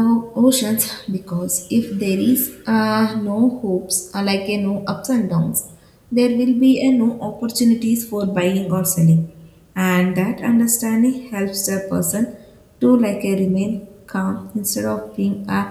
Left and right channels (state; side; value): identical; both; correlation 1.00